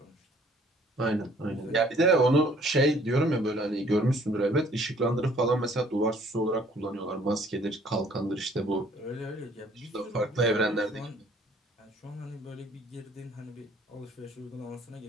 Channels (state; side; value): normal; both; correlation 0.59